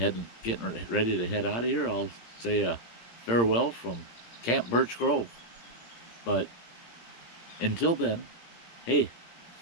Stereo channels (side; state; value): right; late; 17 ms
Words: getting ready to head out of here. I'll say a farewell from Camp Birch Grove. But until then, hey,